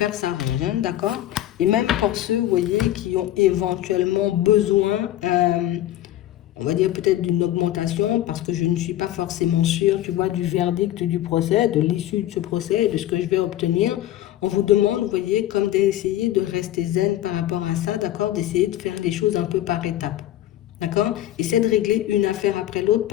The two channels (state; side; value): quieter; right; 13.4 dB